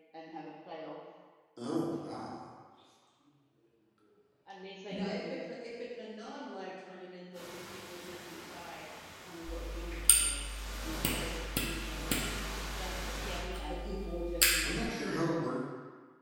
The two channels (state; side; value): identical; both; correlation 1.00